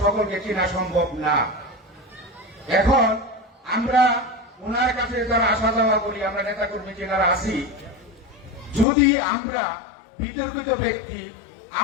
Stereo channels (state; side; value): drops out; right; at 8.8 s